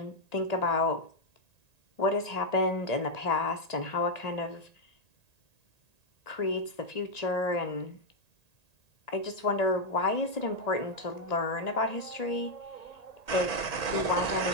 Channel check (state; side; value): late; right; 1.8 ms